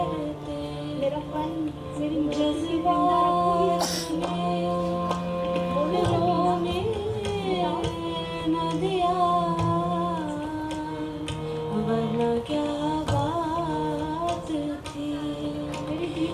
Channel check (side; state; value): both; identical; correlation 1.00